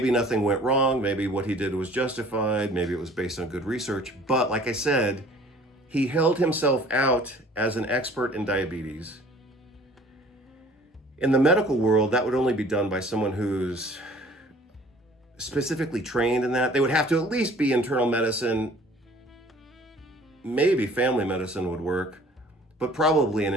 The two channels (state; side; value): normal; both; correlation 0.51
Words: nothing went wrong. Maybe what he did was justified. Maybe it was based on good research. But like I said, he held himself out as an expert in diabetes. In the medical world, that would only be done by someone who's specifically trained in that. They would have to at least be internal medicine. Maybe family medicine would work, but probably an